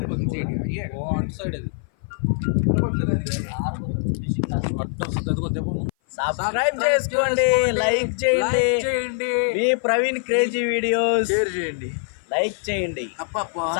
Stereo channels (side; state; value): right; silent; 57 dB below the other